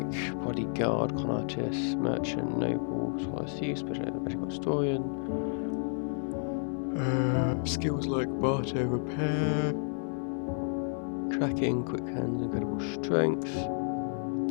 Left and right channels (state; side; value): silent; right; 57 dB below the other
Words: bodyguard, con artist, merchant, noble, scholar, thief, medical historian. Skills like barter, repair, tracking, quick hands, incredible strength.